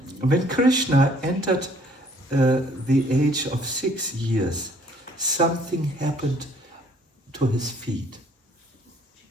When Krishna entered the age of 6 years, something happened to his feet.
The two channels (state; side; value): normal; both; correlation 0.60